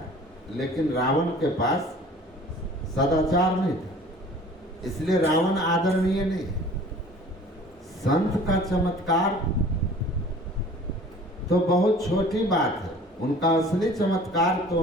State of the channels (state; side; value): normal; both; correlation 0.47